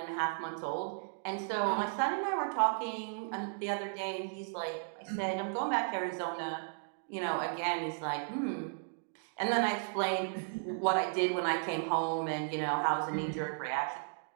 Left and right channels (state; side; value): silent; left; digital silence